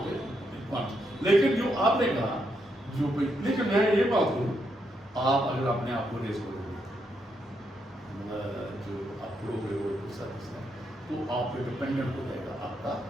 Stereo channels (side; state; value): both; normal; correlation 0.79